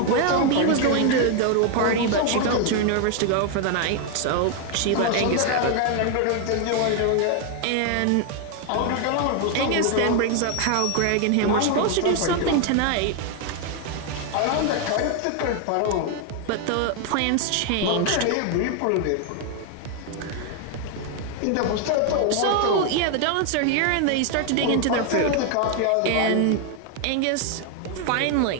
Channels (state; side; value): different; both; correlation 0.00